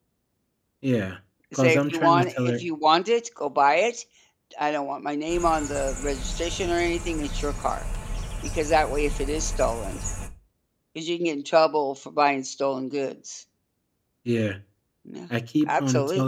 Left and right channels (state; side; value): identical; both; correlation 1.00